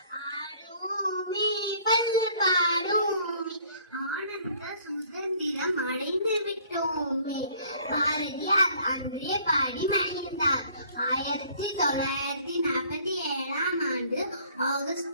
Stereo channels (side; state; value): both; inverted; correlation -0.57